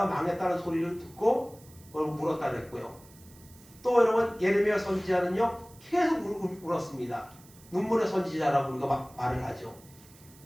망했다는 소리를 듣고 울었다 그랬고요. 또 여러분 예레미야 선지자는요 계속 울었습니다. 눈물의 선지자라고 우리가 말을 하죠.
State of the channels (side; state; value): right; noise; hiss, 24 dB below the sound